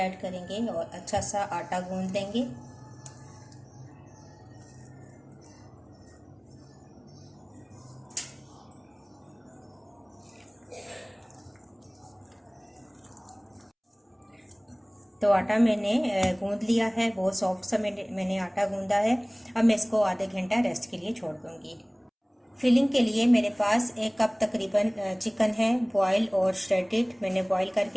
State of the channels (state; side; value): identical; both; correlation 1.00